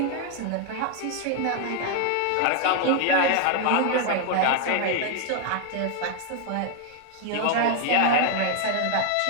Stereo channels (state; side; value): different; both; correlation 0.00